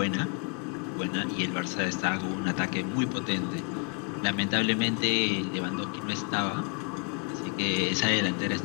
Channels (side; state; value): right; quieter; 35.5 dB